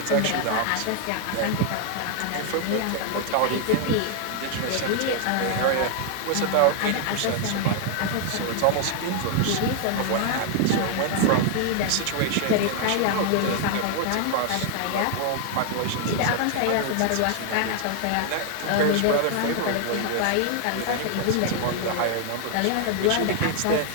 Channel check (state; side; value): different; both; correlation 0.00